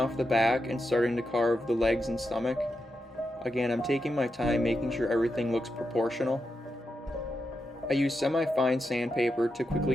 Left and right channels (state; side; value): normal; both; correlation 0.87